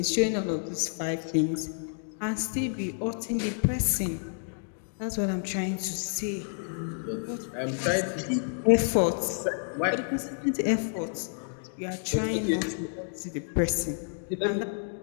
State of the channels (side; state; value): right; silent; digital silence